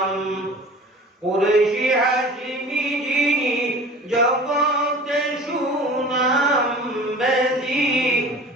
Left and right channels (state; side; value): normal; both; correlation 0.41